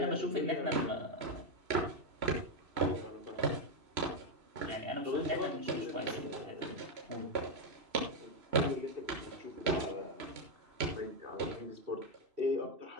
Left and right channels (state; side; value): late; left; 3.0 ms